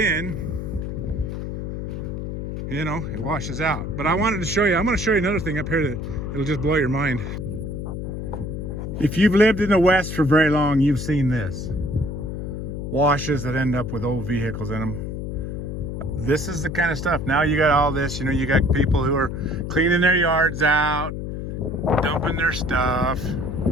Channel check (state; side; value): noise; left; hum, 5 dB below the sound